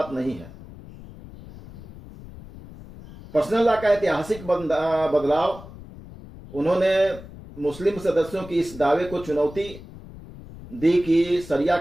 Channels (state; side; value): noise; left; rumble, 16 dB below the sound